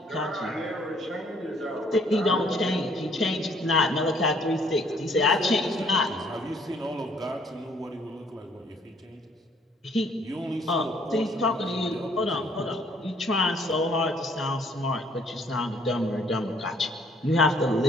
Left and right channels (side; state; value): both; normal; correlation 0.63